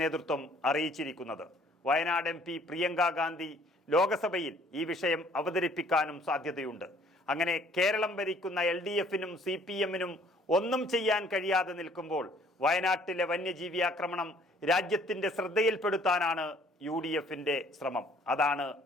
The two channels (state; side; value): normal; both; correlation 0.59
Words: നേതൃത്വം അറിയിച്ചിരിക്കുന്നത്. വയനാട് MP പ്രിയങ്ക ഗാന്ധി ലോകസഭയിൽ ഈ വിഷയം അവതരിപ്പിക്കാനും സാധ്യതയുണ്ട്. അങ്ങനെ കേരളം ഭരിക്കുന്ന LDF-നും CPM-നും ഒന്നും ചെയ്യാൻ കഴിയാതെ നിൽക്കുമ്പോൾ വയനാട്ടിലെ വന്യജീവി ആക്രമണം രാജ്യത്തിന്റെ ശ്രദ്ധയിൽപ്പെടുത്താനാണ് UDF-ന്റെ ശ്രമം. അതാണ്